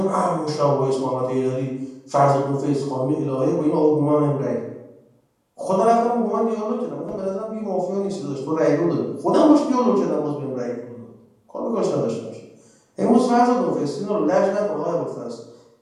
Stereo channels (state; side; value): identical; both; correlation 1.00